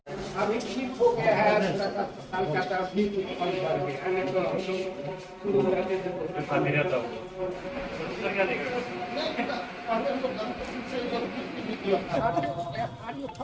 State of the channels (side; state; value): both; identical; correlation 1.00